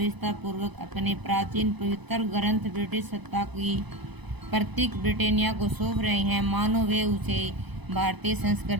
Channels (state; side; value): late; left; 0.99 ms